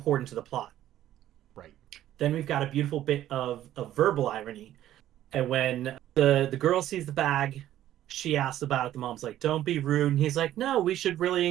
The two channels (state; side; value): quieter; left; 12.7 dB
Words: to the plot. Right. Then we've got a beautiful bit of verbal irony. And when the girl sees the bag, she asks about it. The mom's like, don't be rude. And he's like, no, we should really